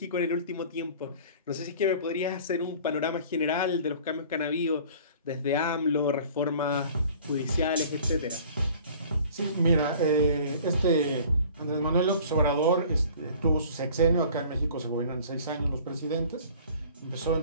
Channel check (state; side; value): inverted; both; correlation -0.47